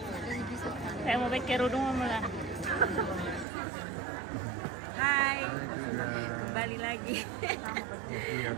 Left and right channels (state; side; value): drops out; left; at 3.5 s